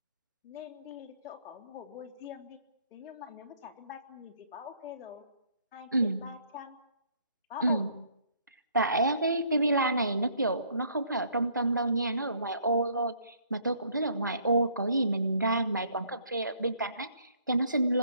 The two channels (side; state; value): both; inverted; correlation -0.64